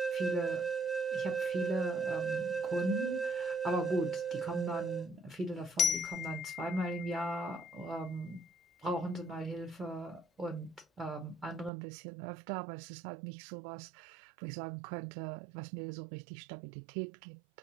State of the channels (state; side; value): drops out; left; at 11.7 s